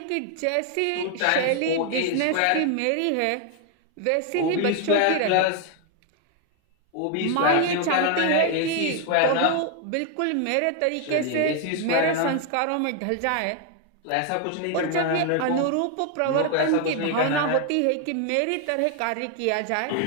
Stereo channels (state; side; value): different; both; correlation 0.00